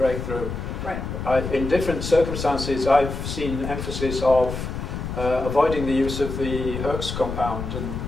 Right. In different circumstances, I've seen emphasis of avoiding the use of the Herx compound and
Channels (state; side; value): noise; left; rumble, 5 dB below the sound